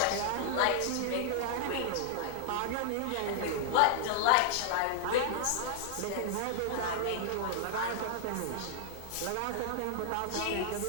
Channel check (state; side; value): different; both; correlation 0.00